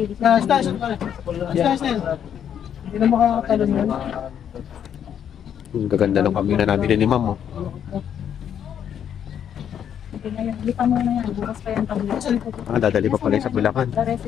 Station. Hindi na makakatalon yan. Ang gaganda ng kambing na nabili ni Ma'am. Lipa mo na yan, bukas pa yan tabi. Dadali pa pala sa Bulacan. The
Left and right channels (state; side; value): quieter; right; 9.0 dB